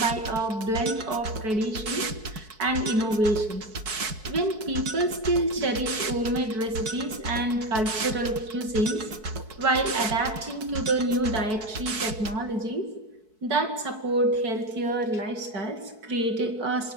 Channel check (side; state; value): left; late; 4.6 ms